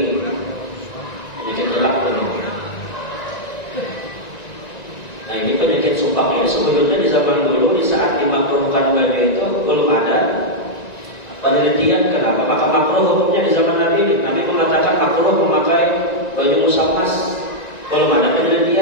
Penyakit jelak begitu. Nah ini penyakit supak ini sebetulnya di zaman dulu, di saat dimakruhkan baju itu belum ada penelitian kenapa maka makruh hukumnya di zaman Nabi ini. Nabi mengatakan makruh memakai baju musammas, belum ada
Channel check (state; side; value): late; right; 1.9 ms